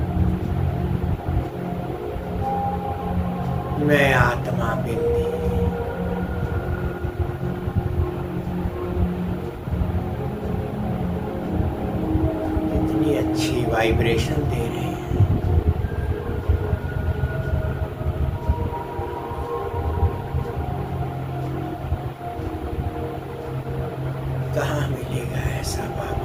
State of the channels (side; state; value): both; identical; correlation 1.00